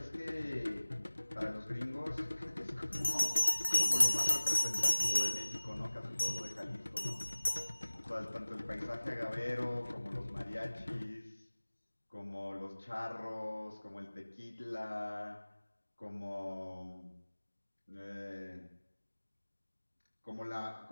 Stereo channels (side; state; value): both; inverted; correlation -1.00